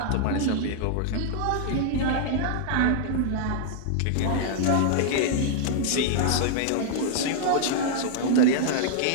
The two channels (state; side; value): different; both; correlation -0.01